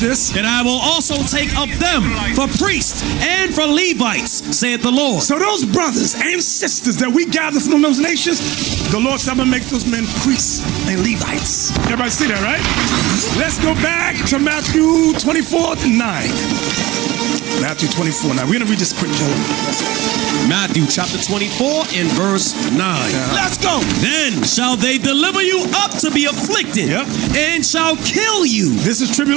And I will also take of them for priests and for Levites, saith the Lord. So those brothers and sisters that we gather from those nations, the Lord said, I'm going to make those men priests and Levites. Everybody see that, right? Let's go back to Matthew 24:9. Matthew 24:9. We're going to read this quick, Joe. Matthew chapter 24 and verse 9. Let's go. Then shall they deliver you up to be afflicted, and shall kill you. This is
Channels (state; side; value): quieter; left; 18.9 dB